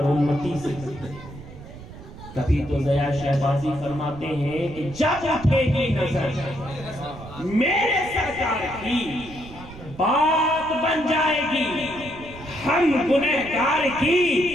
امتی سے کرتے ہیں۔ کبھی تو ضیاء شہبازی فرماتے ہیں کہ جب اٹھے گی نظر میرے سرکار کی بات بن جائے گی، ہم گنہگار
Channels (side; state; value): right; noise; rumble, 16 dB below the sound